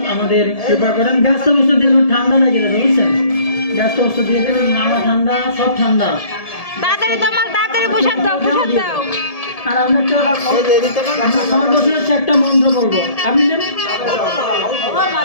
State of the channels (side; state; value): right; late; 1.7 ms